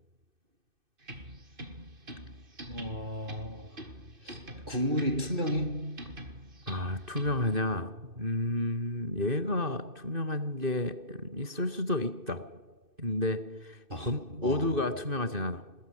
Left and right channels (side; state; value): left; late; 2.6 ms